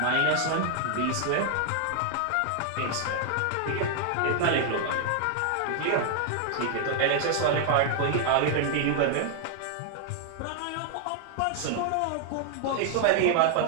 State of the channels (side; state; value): both; different; correlation 0.00